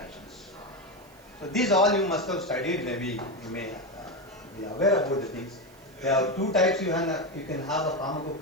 So these all you must have studied. Maybe you may be aware about the things. There are two types. You can have a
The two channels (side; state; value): right; noise; hiss, 27 dB below the sound